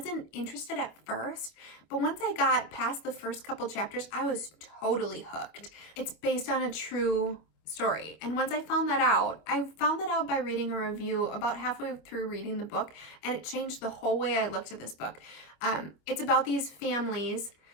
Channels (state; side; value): late; right; 25 ms